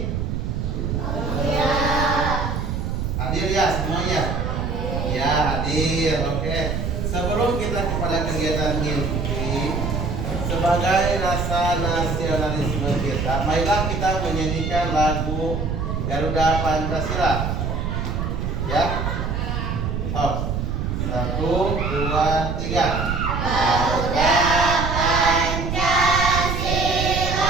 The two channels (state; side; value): noise; right; rumble, 1 dB below the sound